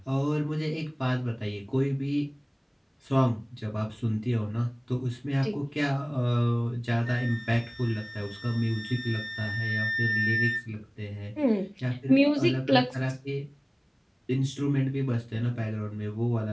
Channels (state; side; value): identical; both; correlation 1.00